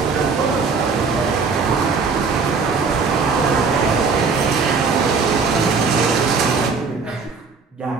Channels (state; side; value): quieter; left; 4.9 dB